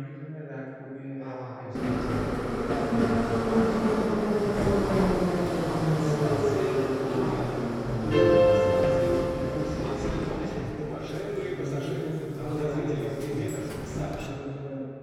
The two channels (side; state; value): both; identical; correlation 1.00